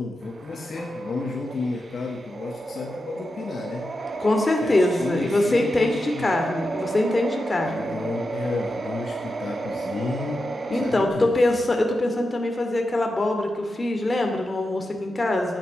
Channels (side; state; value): both; normal; correlation 0.89